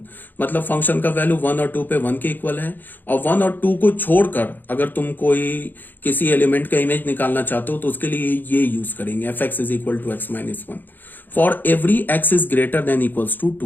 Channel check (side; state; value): right; late; 0.090 ms